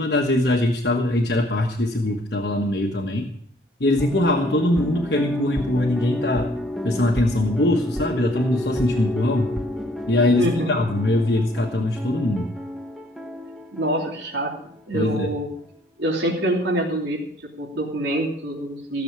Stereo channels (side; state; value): both; normal; correlation 0.61